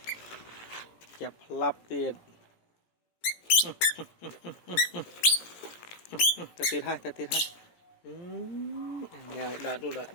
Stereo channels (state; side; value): late; right; 17 ms